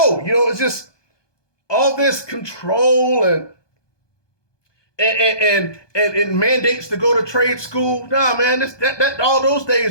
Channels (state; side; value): late; right; 1.2 ms